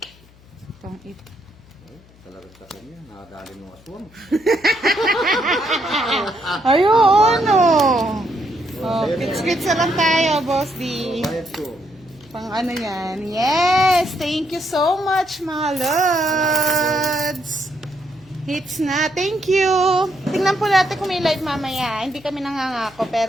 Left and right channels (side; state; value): left; noise; hum, 26 dB below the sound